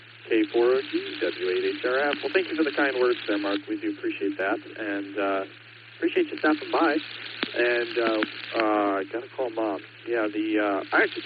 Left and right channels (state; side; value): identical; both; correlation 1.00